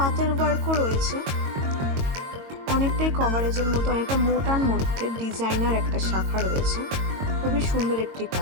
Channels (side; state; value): left; late; 22 ms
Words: ওয়ার্কও রয়েছে, অনেকটাই কভারেজের মধ্যে, অনেকটা মোটার মধ্যে ডিজাইনার একটা শাখা রয়েছে। খুবই সুন্দর একটি